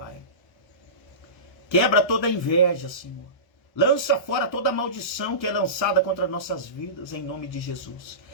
Quebra toda a inveja, Senhor. Lança fora toda a maldição que é lançada contra nossas vidas, em nome de Jesus.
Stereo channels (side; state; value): right; late; 1.0 ms